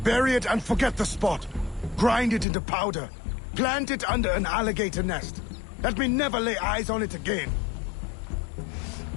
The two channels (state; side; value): drops out; right; at 2.5 s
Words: Bury it and forget the spot. Grind it into powder. Plant it under an alligator nest. Let me never lay eyes on it again.